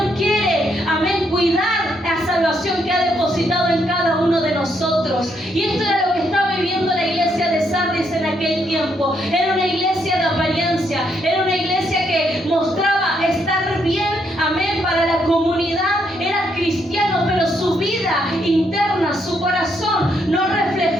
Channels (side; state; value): both; normal; correlation 0.75